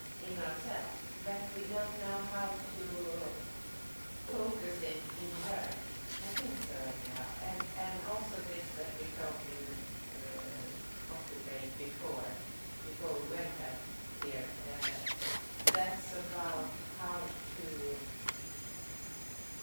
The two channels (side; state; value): both; inverted; correlation -1.00